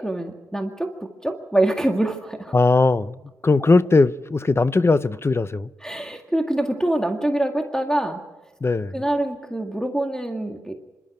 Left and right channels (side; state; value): both; normal; correlation 0.91